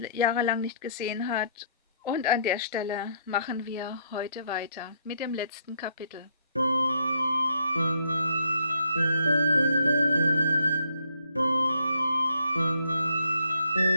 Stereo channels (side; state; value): both; inverted; correlation -0.69